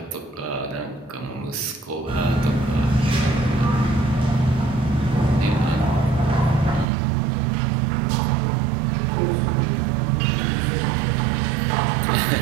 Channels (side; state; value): left; drops out; at 6.9 s